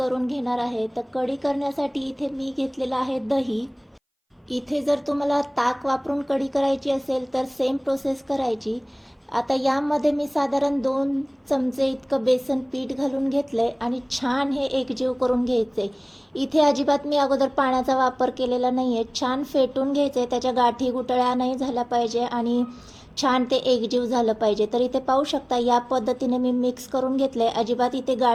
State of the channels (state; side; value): identical; both; correlation 1.00